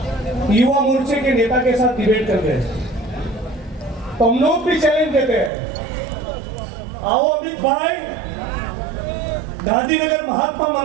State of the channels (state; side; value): drops out; left; at 5.5 s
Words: युवा मोर्चे के नेता के साथ डिबेट कर रहे हैं, तो हम लोग भी चैलेंज देते हैं, आओ अमित भाई, गांधीनगर महात्मा